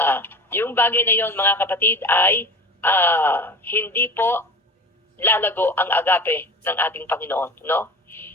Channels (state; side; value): normal; both; correlation 0.35